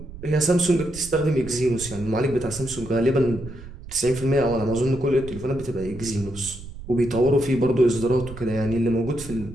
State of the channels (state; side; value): noise; right; rumble, 14 dB below the sound